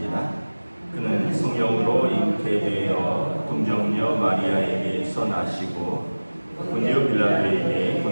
그는 성령으로 잉태되어 동정녀 마리아에게서 나시고 본디오 빌라도에게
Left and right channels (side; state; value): both; inverted; correlation -1.00